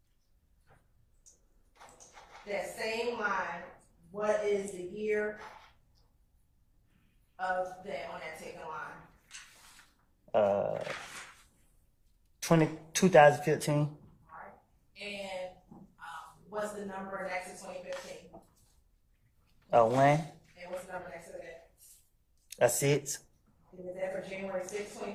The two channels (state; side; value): identical; both; correlation 1.00